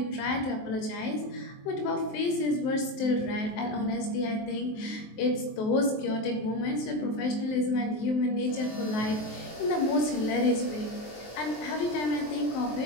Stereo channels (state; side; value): late; right; 23 ms